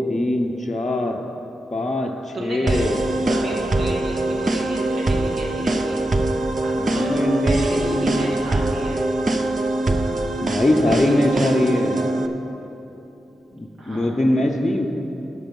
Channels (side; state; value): both; normal; correlation 0.89